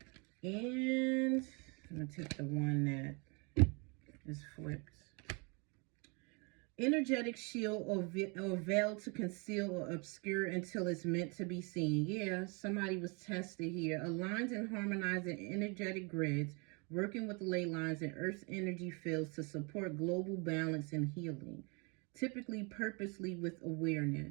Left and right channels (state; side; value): quieter; left; 31.7 dB